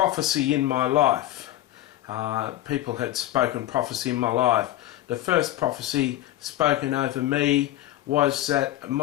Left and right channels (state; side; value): quieter; right; 14.6 dB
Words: in my life. People had spoken prophecy in my life. The first prophecy spoken over me was that